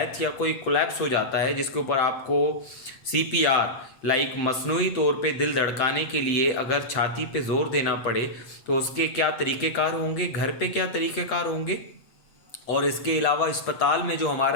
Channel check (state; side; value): late; right; 7.9 ms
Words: या कोई कोलैप्स हो जाता है जिसके ऊपर आपको सीपीआर लाइक मसनूई तौर पे दिल धड़काने के लिए अगर छाती पे ज़ोर देना पड़े तो उसके क्या तरीक़ेकार होंगे, घर पे क्या तरीक़ेकार होंगे। और इसके अलावा अस्पताल में जो